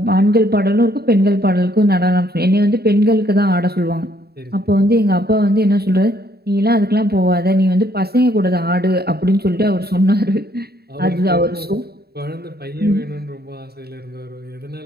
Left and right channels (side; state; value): left; late; 0.46 ms